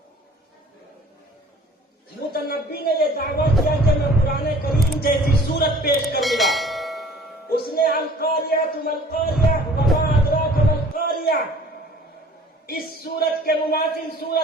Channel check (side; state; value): both; normal; correlation 0.50